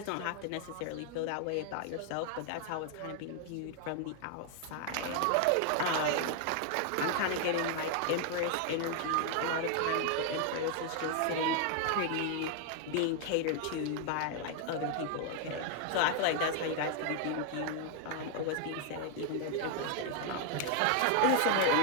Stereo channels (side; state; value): both; different; correlation 0.00